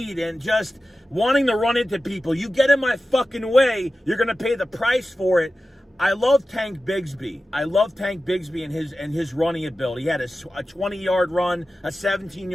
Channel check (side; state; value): both; normal; correlation 0.94